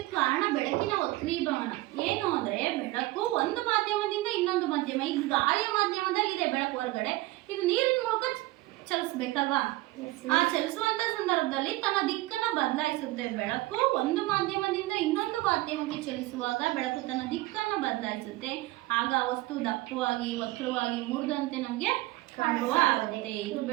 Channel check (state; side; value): quieter; left; 19.0 dB